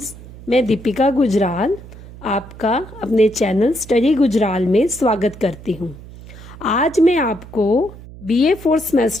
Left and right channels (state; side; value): noise; right; hum, 17 dB below the sound